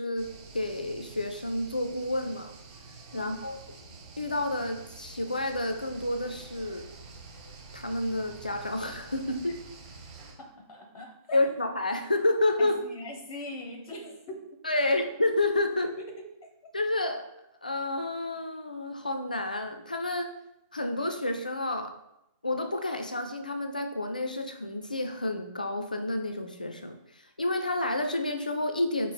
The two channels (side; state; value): both; inverted; correlation -0.77